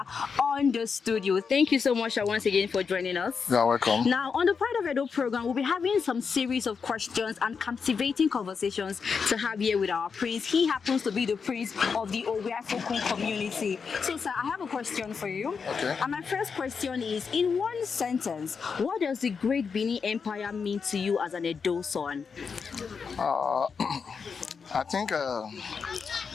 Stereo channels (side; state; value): right; quieter; 5.7 dB